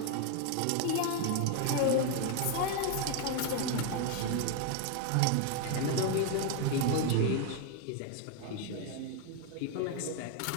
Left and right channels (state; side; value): different; both; correlation 0.00